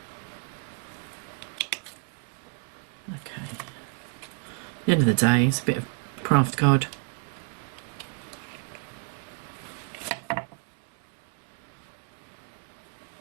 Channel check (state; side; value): quieter; left; 34.1 dB